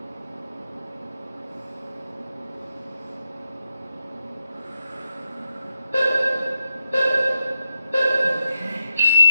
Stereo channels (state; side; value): inverted; both; correlation -0.86